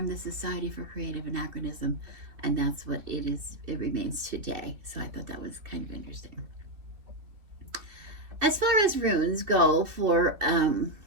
the Society for Creative Anachronism, and that's what it is. It remains today. So I thought that was kind of interesting. As far as runes go for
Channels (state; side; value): late; left; 2.7 ms